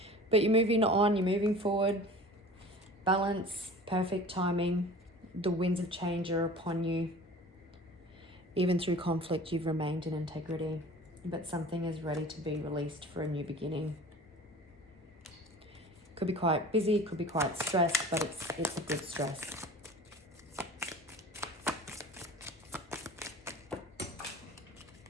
But you're moving on, you're moving forward. Balance, perfect timing. The winds of change are upon you. Even through conflict, you've remained in integrity, but something is ready to be released for a new beginning. Could be quite busy, could be quite stressed, but it's a good stress.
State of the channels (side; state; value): both; normal; correlation 0.41